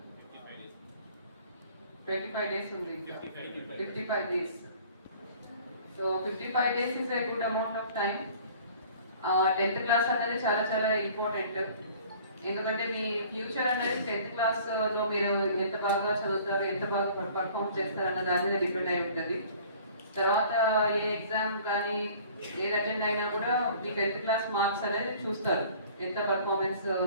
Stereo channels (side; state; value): both; inverted; correlation -0.50